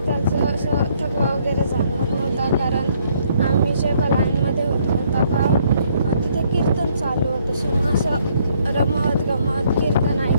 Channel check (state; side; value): inverted; both; correlation -0.67